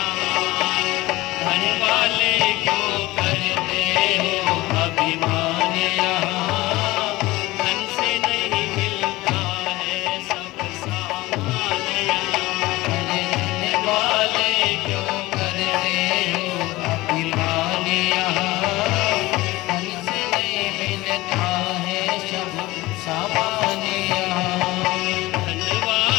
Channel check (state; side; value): quieter; right; 19.4 dB